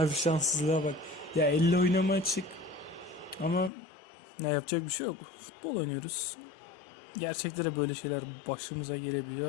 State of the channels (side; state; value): right; drops out; at 3.7 s